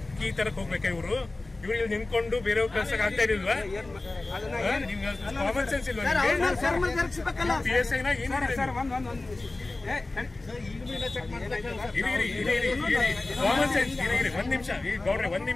ಕೀ ತರಕ್ ಹೋಗ್ಬೇಕಾ ಇವ್ರು ಇಲ್ಲಿ ನಿಂತ್ಕೊಂಡು ಬೇರೆ ಕಳ್ಸಕ್ ಆಗ್ತಾ ಇರಲಿಲ್ವಾ? ಕಾಮನ್ ಸೆನ್ಸ್ ಇಲ್ವಾ? PSI ನ ಕಾಮನ್ ಸೆನ್ಸ್ ಒಂದ್ ನಿಮಿಷ ಗೌಡ್ರೆ ಒಂದ್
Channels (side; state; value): right; quieter; 3.1 dB